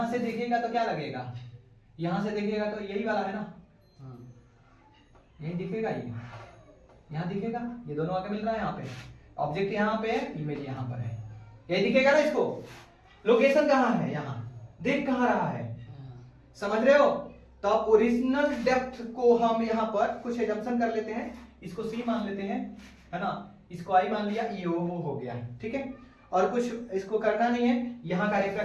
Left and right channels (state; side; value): identical; both; correlation 1.00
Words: से देखेगा तो क्या लगेगा, यहां से देखेगा तो यही वाला है ना, यही दिखेगा, ये यहां दिखेगा, ये दोनों आगे मिल रहा है, यहाँ पे ऑब्जेक्ट यहाँ पे है, इमेज यहाँ पर है, यही दिखेगा ना। इसको लोकेशन कहाँ है, यहाँ देख कहाँ रहा है, समझ रहे हो। तो अब ओरिजिनल डेप्थ को हम यहाँ पर कुछ एजम्पशन कर लेते हैं, इसको सी मान लेते हैं, है ना, इसको आई मान लिया, ई ओ हो गया, ठीक है। और कुछ इसको करना नहीं है, यहाँ का